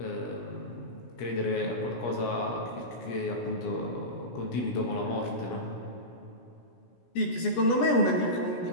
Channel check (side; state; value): right; late; 17 ms